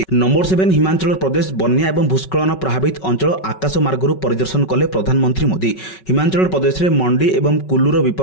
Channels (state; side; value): late; right; 5.3 ms